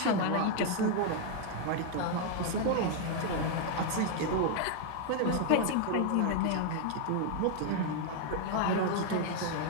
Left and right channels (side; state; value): both; different; correlation 0.00